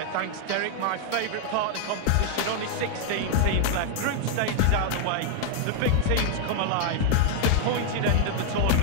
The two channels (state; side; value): different; both; correlation 0.00